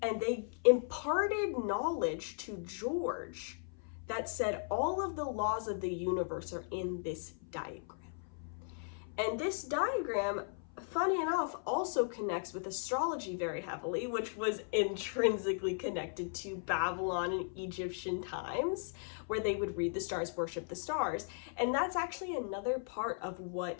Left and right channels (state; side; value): silent; right; 53 dB below the other